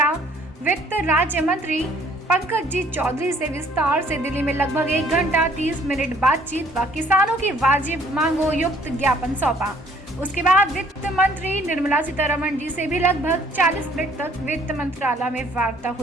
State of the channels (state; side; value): normal; both; correlation 0.59